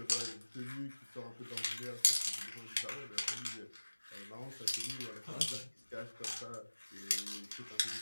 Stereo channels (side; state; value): both; inverted; correlation -1.00